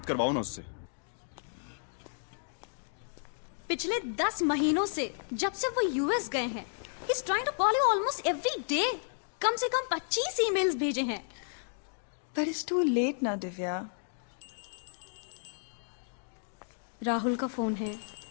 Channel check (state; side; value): silent; right; digital silence